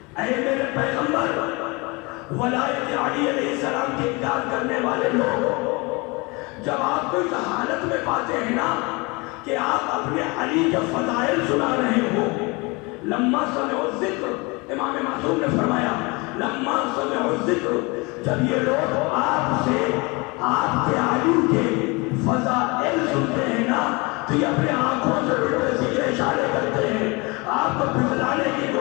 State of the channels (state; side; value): quieter; right; 26.9 dB